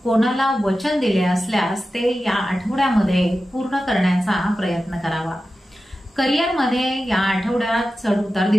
कोणाला वचन दिले असल्यास ते या आठवड्यामध्ये पूर्ण करण्याचा प्रयत्न करावा। करिअरमध्ये या आठवड्यात चढउतार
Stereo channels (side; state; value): both; normal; correlation 0.93